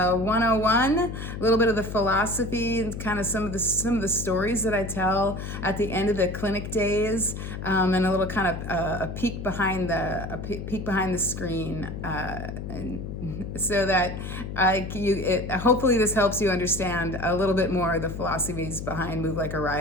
a little bit of the philosophy and kind of some of the stories that I tell at the end of the clinic days. And a little kind of a peek behind the screen, and so that hopefully this helps you understand a little bit more of the philosophies behind Move Like a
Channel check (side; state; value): left; noise; hum, 7 dB below the sound